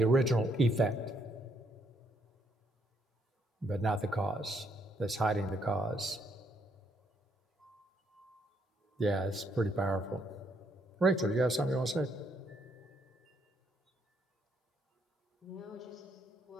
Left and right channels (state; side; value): normal; both; correlation 0.73